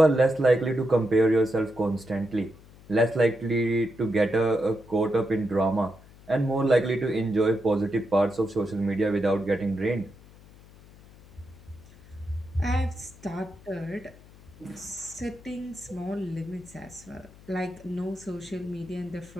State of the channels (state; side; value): noise; left; hum, 23 dB below the sound